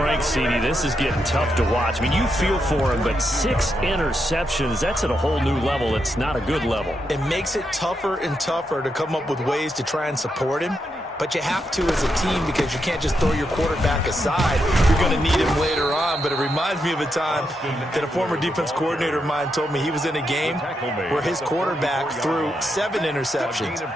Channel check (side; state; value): both; normal; correlation 0.83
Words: CD, this is getting tough to watch. I mean, you feel for him, but 6 interceptions, that's at a whole new level. It's not a good level. It makes it tougher and tougher to come up with ways to try and support him. but you have to as a team because you can't just throw your quarterback aside. You're going to need him later on, but it reminds me of a time that a former defense coordinator of mine told me he was in a game where his quarterback threw 7 interceptions.